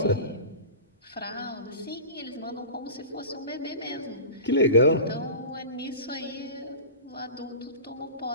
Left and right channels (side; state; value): both; inverted; correlation -0.34